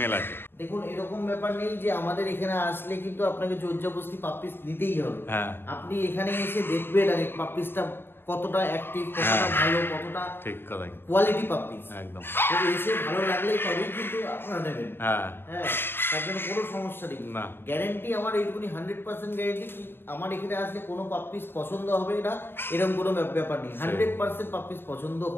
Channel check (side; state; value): right; late; 0.10 ms